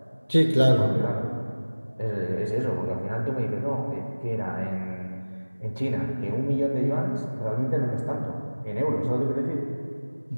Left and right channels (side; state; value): both; inverted; correlation -1.00